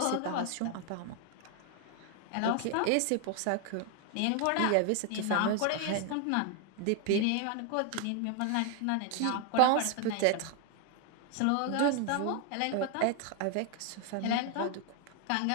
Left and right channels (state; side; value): different; both; correlation 0.00